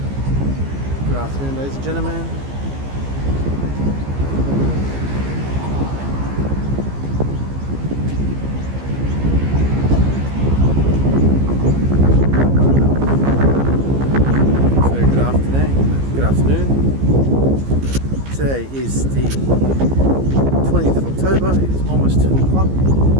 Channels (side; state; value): left; late; 15 ms